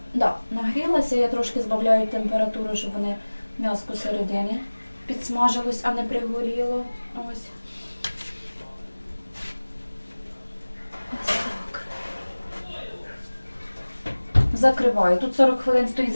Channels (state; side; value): inverted; both; correlation -1.00